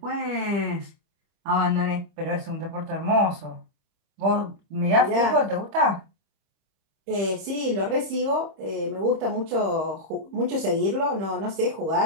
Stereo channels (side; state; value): left; late; 30 ms